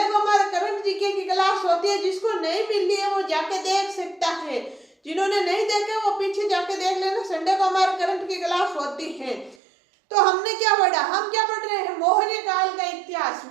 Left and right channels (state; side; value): drops out; left; at 9.6 s